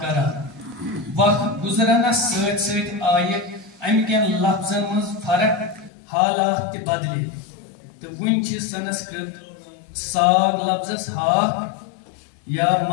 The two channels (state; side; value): drops out; right; at 5.9 s